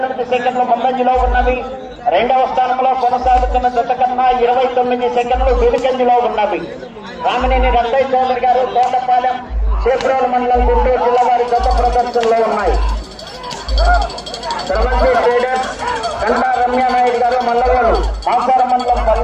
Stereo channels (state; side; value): identical; both; correlation 1.00